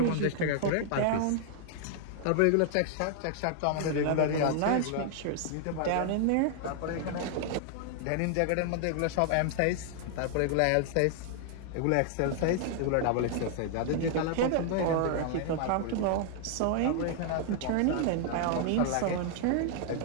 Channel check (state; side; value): different; both; correlation 0.00